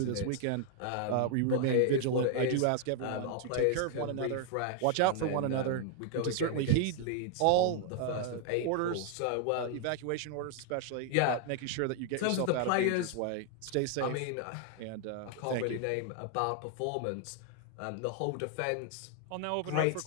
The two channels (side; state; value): both; different; correlation 0.00